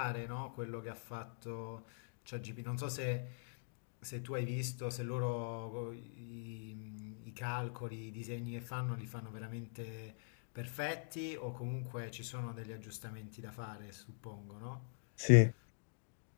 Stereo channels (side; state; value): right; silent; digital silence